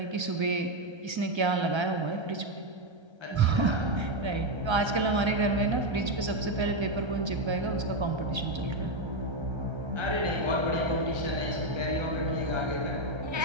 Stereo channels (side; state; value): left; late; 1.3 ms